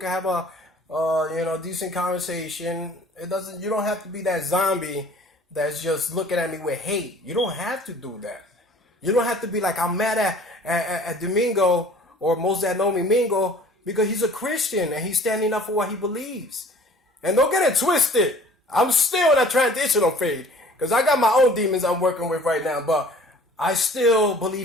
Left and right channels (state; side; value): normal; both; correlation 0.50